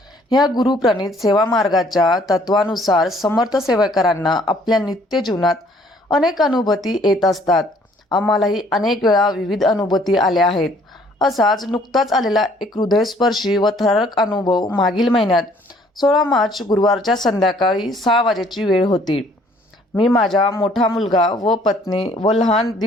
ह्या गुरुप्रणीत सेवा मार्गाच्या तत्वानुसार समर्थ सेवकांना आपल्या नित्य जीवनात अनेक अनुभूती येत असतात. आम्हालाही अनेक वेळा विविध अनुभूती आल्या आहेत. असाच नुकताच आलेला एक हृदयस्पर्शी व थरारक अनुभव मागील महिन्यात 16 मार्च गुरुवारच्या संध्याकाळी 6 वाजेची वेळ होती. मी माझा मोठा मुलगा व पत्नी व लहान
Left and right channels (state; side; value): normal; both; correlation 0.60